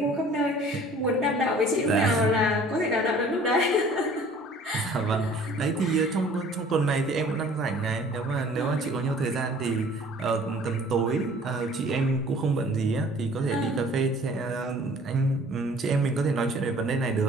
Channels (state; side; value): normal; both; correlation 0.51